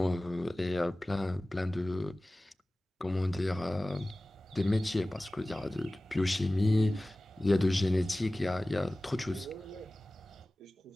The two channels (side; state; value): both; normal; correlation 0.97